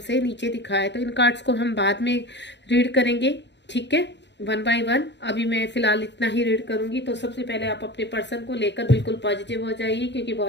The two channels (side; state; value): right; late; 0.51 ms